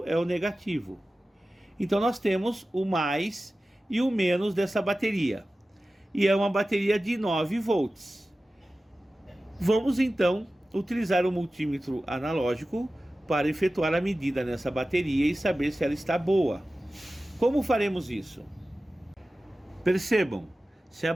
é o negativo. Então nós temos o mais e o menos dessa bateria. E é uma bateria de 9 volts. Vamos então utilizar o multímetro analógico para efetuar a medida nessa bateria e saber se ela está boa. Como faremos isso? Percebam, se a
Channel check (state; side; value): normal; both; correlation 0.95